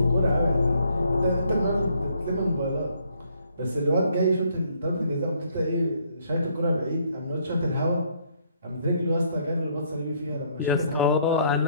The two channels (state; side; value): inverted; both; correlation -0.67